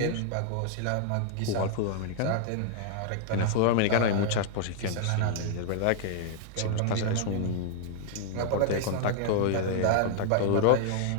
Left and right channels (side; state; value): both; different; correlation 0.00